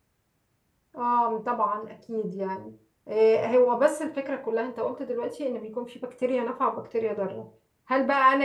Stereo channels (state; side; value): identical; both; correlation 1.00